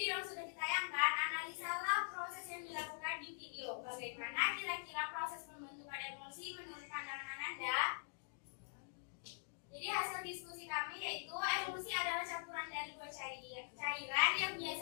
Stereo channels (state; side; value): silent; right; digital silence